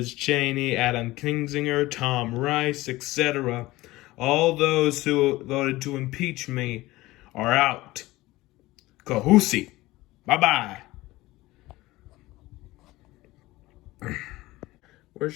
Cheney, Adam Kinzinger, Tom Rice, etc. All those who voted to impeach me are out. Kahusi. Bye-bye. We're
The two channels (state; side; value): quieter; right; 18.8 dB